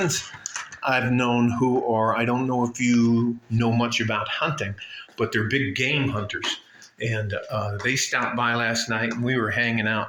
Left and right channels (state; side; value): identical; both; correlation 1.00